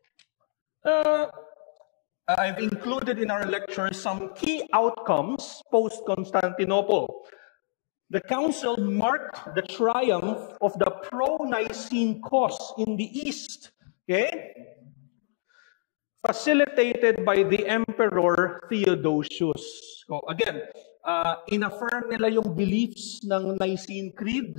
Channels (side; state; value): right; silent; digital silence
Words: I've included in our lecture some key outcomes post-Constantinople. The council marked the triumph of the pro-Nicene cause in the East. Okay? Facilitated by the Emperor Theodosius. So again, inaffirm nila yung beliefs ng Nicene Creed